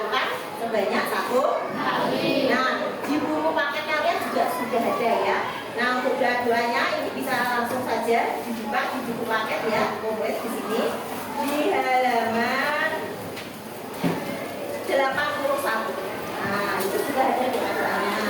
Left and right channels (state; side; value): identical; both; correlation 1.00